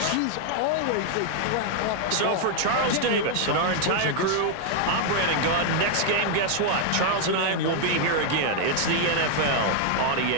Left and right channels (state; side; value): different; both; correlation 0.00